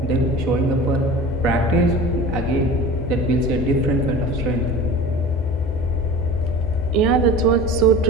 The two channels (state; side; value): normal; both; correlation 0.37